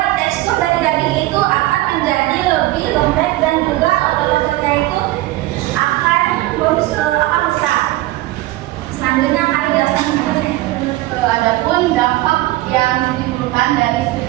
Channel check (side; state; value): left; quieter; 17.6 dB